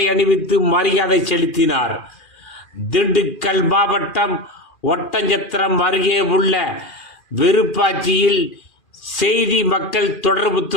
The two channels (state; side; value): late; right; 2.4 ms